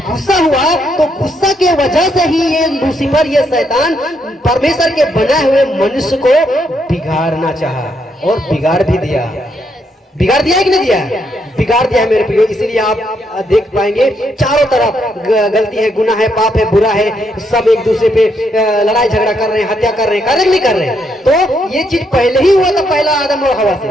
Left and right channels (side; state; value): both; normal; correlation 0.76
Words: गुस्सा हुआ तो गुस्सा के वजह से ही ये लूसीफर, ये शैतान परमेश्वर के बनाए हुए मनुष्य को बिगाड़ना चाहा और बिगाड़ भी दिया। बिगाड़ दिया है कि नहीं दिया है? बिगाड़ दिया है मेरे प्रियो। इसीलिए आप देख पाएंगे चारों तरफ गलती है, गुनाह है, पाप है, बुरा है, सब एक दूसरे पे लड़ाई झगड़ा कर रहे हैं, हत्या कर रहे हैं, नहीं कर रहे हैं। तो ये चीज पहले ही हुआ था, पहला आदम और हवा से,